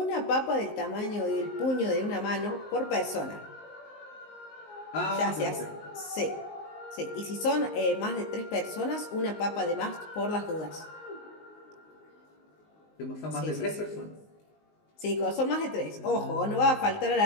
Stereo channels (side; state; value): right; late; 19 ms